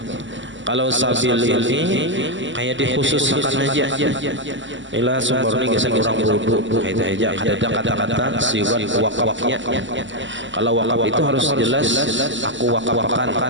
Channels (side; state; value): left; late; 0.54 ms